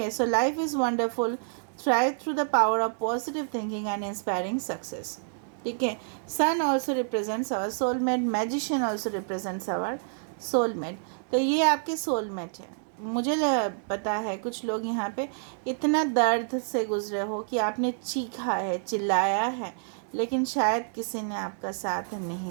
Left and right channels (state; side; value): silent; left; 59 dB below the other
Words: So life is wonderful thrive through the power of positive thinking and inspiring success. ठीक है, sun also represents our soulmate, magician also represents our soulmate. तो ये आपके सोलमेट है। मुझे पता है कुछ लोग यहाँ पे इतना दर्द से गुजरे हो कि आपने चीखा है, चिल्लाया है, लेकिन शायद किसी ने आपका साथ